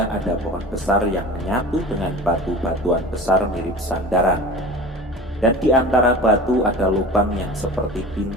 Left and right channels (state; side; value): normal; both; correlation 0.36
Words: ada pohon besar yang menyatu dengan batu-batuan besar mirip sandaran. Dan di antara batu ada lubang yang seperti